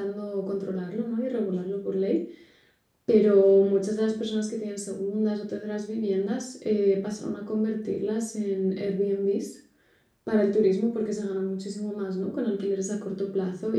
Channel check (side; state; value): both; identical; correlation 1.00